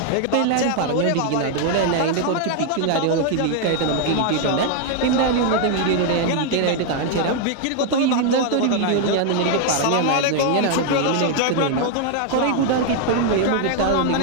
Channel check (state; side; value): different; both; correlation 0.00